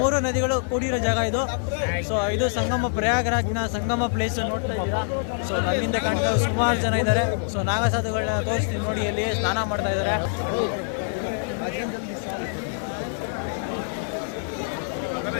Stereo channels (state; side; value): silent; right; 62 dB below the other